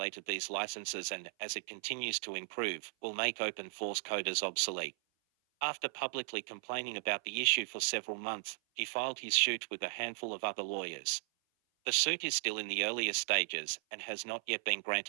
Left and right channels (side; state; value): left; silent; 53 dB below the other